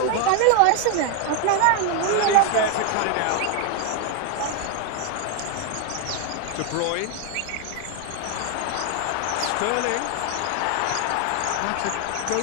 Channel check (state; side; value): different; both; correlation 0.01